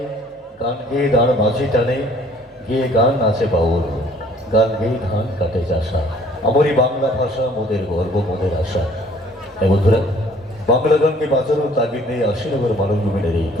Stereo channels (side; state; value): both; normal; correlation 0.57